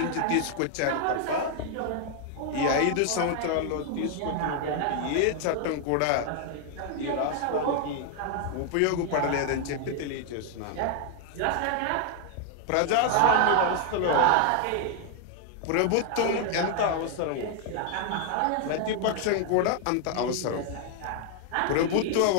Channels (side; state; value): both; different; correlation 0.00